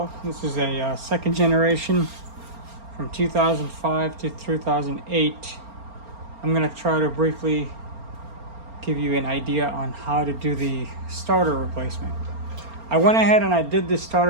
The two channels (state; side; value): late; left; 4.3 ms